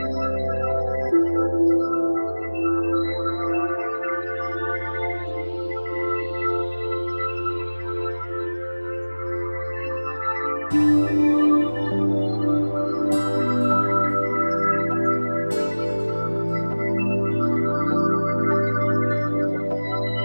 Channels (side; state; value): both; inverted; correlation -1.00